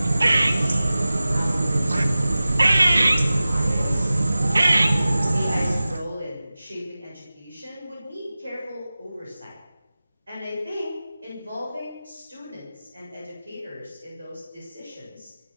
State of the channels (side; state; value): both; inverted; correlation -0.96